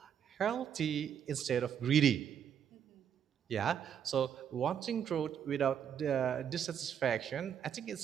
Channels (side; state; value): left; quieter; 8.5 dB